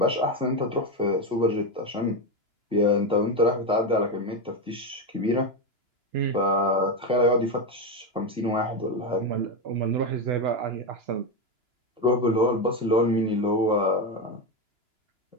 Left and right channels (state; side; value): late; left; 2.9 ms